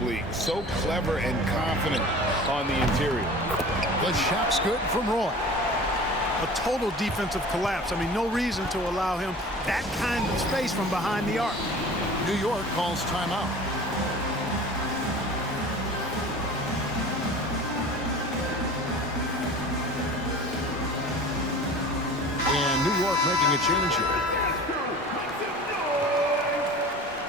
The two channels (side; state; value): both; normal; correlation 0.40